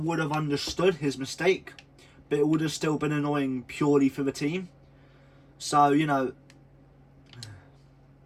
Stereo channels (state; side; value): identical; both; correlation 1.00